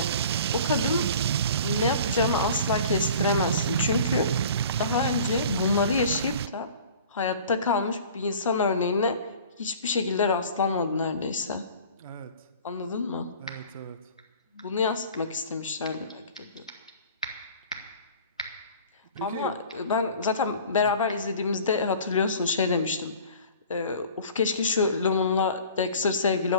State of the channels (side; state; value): both; inverted; correlation -0.45